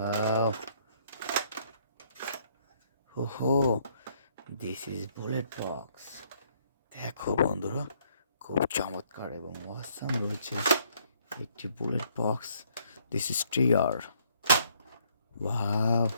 Ho, this is bullet box. দেখো বন্ধুরা, খুব চমৎকার এবং অসাম রয়েছে একটি bullet box. This is trigger. Wow,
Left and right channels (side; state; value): both; inverted; correlation -0.67